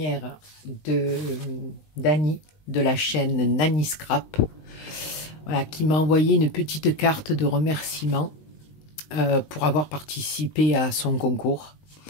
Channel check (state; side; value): late; right; 19 ms